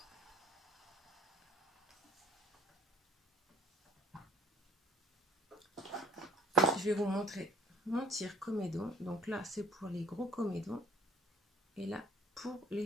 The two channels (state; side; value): normal; both; correlation 0.56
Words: Je vais vous montrer mon tire comédon. Donc là, c'est pour les gros comédons. Et là, pour